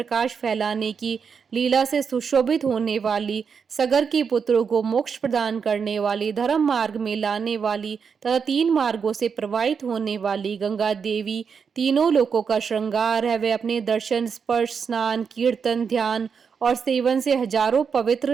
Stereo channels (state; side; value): quieter; left; 6.2 dB